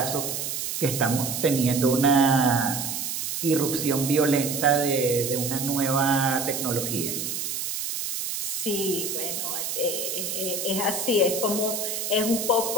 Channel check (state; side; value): noise; right; hiss, 3 dB below the sound